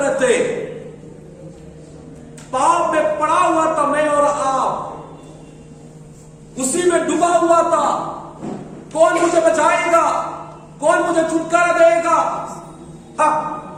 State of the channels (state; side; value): identical; both; correlation 1.00